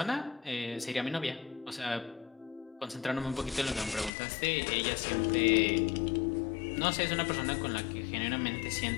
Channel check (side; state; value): right; drops out; at 4.1 s